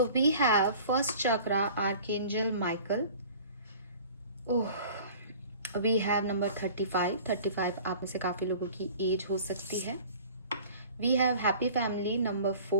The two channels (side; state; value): both; inverted; correlation -0.45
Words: we have first chakra, Archangel Michael. Oh, we have number 35. 35 आप में से काफ़ी लोगों की एज हो सकती है। We have Happy Family number